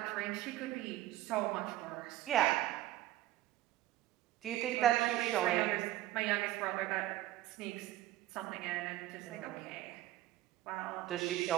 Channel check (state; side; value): quieter; left; 14.8 dB